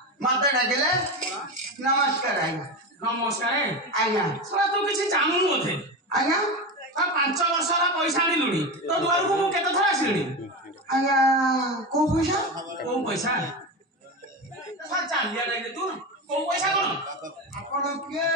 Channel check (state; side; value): normal; both; correlation 0.20